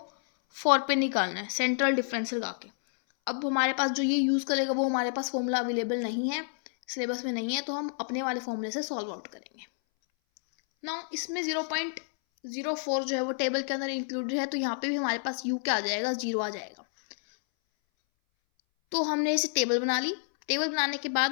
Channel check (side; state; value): right; silent; 58 dB below the other